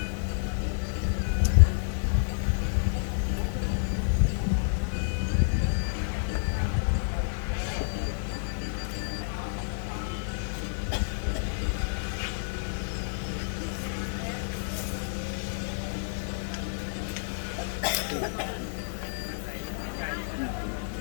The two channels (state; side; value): silent; right; 58 dB below the other